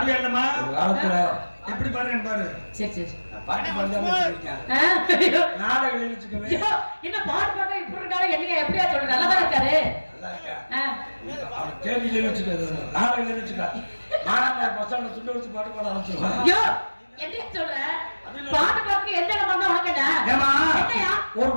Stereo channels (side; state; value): both; inverted; correlation -1.00